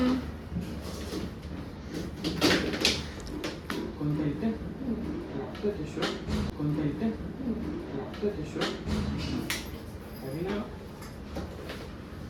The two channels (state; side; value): identical; both; correlation 1.00